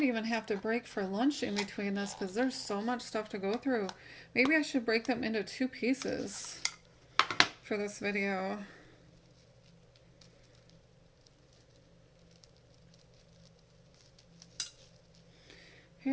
even have to break for lunch in between this because there's so much stuff to go through. Maybe I should break them into two pieces for this video.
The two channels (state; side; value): identical; both; correlation 1.00